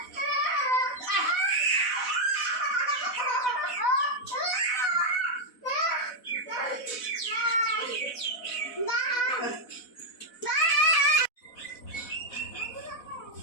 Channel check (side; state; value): right; late; 4.0 ms